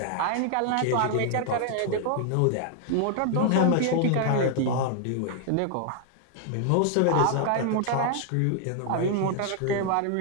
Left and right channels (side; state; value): both; different; correlation 0.00